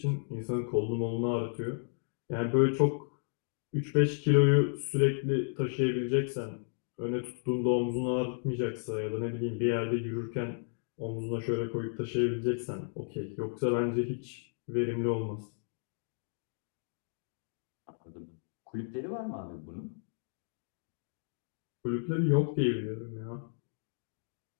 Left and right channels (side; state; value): right; silent; digital silence